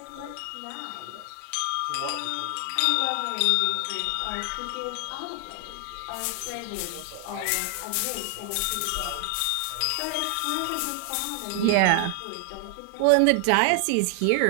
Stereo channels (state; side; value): different; both; correlation 0.00